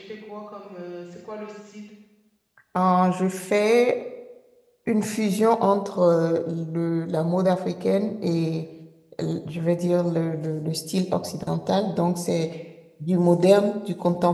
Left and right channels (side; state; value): both; identical; correlation 1.00